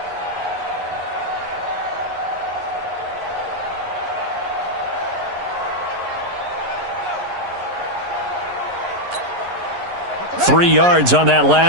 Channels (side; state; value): left; late; 11 ms